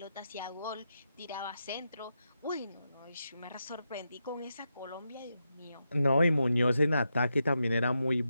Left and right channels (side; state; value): both; inverted; correlation -0.86